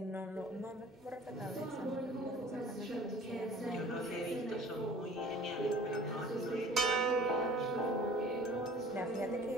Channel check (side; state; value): both; normal; correlation 0.47